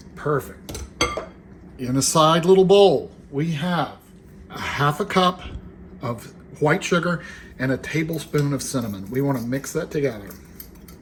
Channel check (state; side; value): identical; both; correlation 1.00